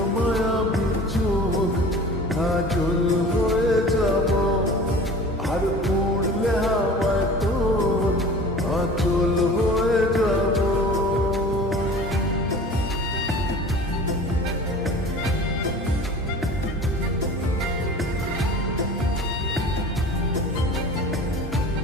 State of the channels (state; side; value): normal; both; correlation 0.41